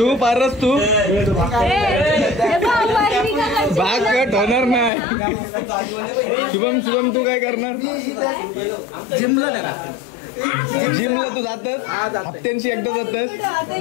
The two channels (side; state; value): right; drops out; at 4.9 s